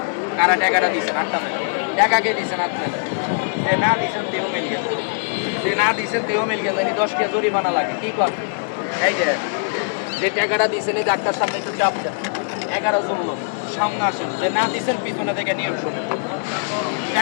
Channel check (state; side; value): silent; right; digital silence